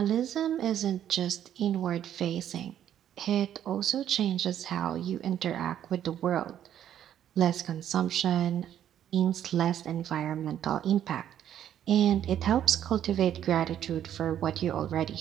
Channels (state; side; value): quieter; left; 10.5 dB